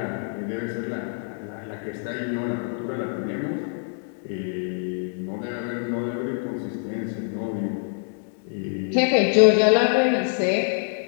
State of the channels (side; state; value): right; silent; 62 dB below the other